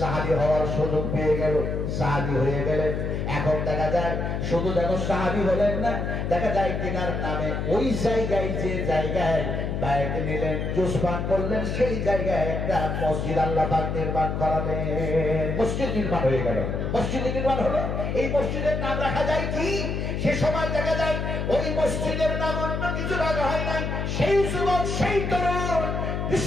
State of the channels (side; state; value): left; noise; hum, 2 dB below the sound